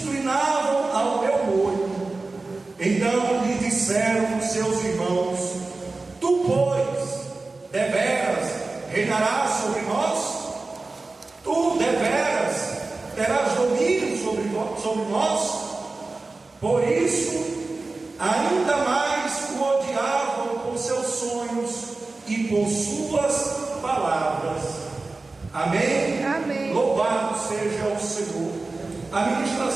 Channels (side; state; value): left; quieter; 3.5 dB